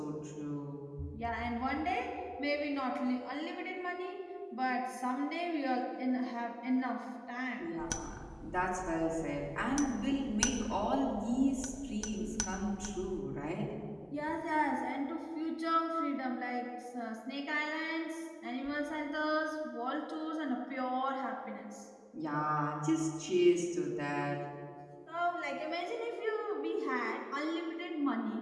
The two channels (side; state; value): both; identical; correlation 1.00